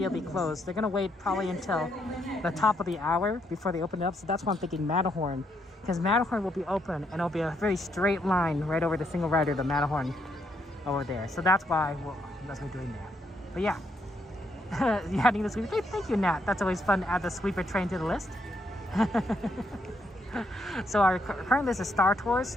close. They're gonna wait probably until the top of the hour before they open it up, so that's why I'm thinking Matterhorn, because Matterhorn will be open and it'll be a very straight line right over the single rider, the Matterhorn over there. So that's why that's what we're doing that. But yeah, you're adding the sweeper train. Thank you, Nat. That's always fun to add the sweeper train to the list. So our current list is Star Tours,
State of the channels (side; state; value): both; normal; correlation 0.75